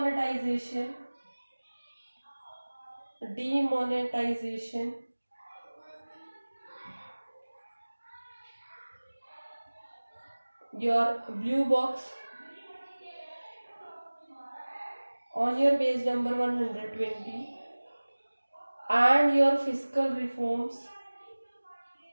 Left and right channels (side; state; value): both; inverted; correlation -1.00